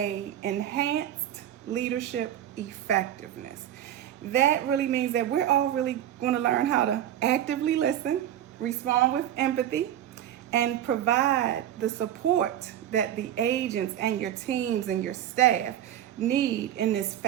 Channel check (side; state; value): left; quieter; 11.4 dB